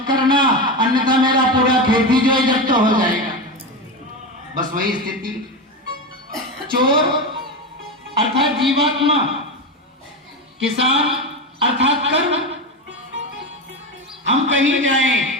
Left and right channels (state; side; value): normal; both; correlation 0.18